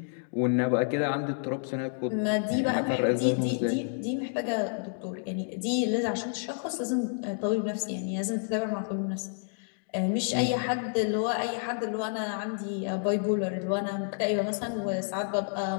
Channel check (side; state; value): right; silent; digital silence